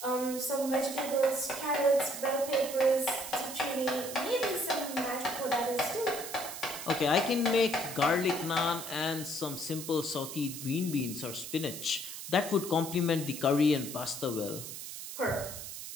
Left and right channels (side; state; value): right; noise; hiss, 9 dB below the sound